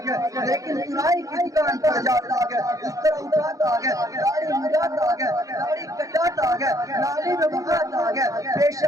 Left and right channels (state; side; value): late; left; 0.16 ms